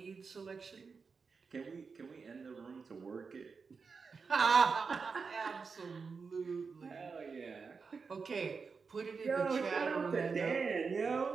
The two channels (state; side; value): quieter; left; 5.1 dB